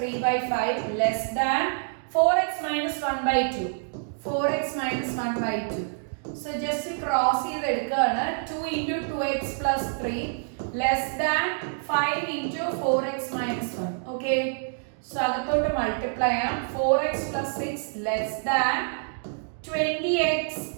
less than 4x minus 1/2 4x minus 1/2. So just cross ചെയ്തെടുക്കുകയാണ്. 2 into 2x plus 3 less than 5 into 4x minus 1. Okay. So അകത്തോട്ട് മൾട്ടിപ്ലൈ ചെയ്യാം. 4x plus 6 less than 20x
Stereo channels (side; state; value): left; silent; digital silence